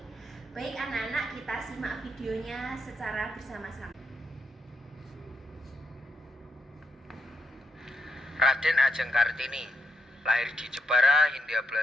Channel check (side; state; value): both; normal; correlation 0.79